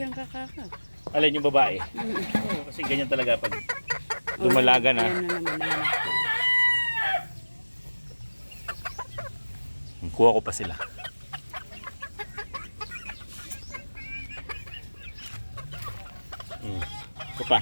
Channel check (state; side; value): inverted; both; correlation -1.00